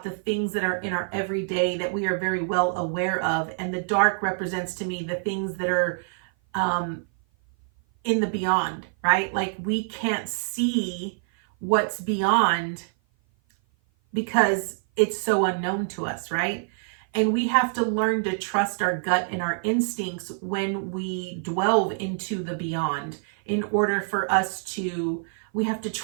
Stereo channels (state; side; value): silent; left; 56 dB below the other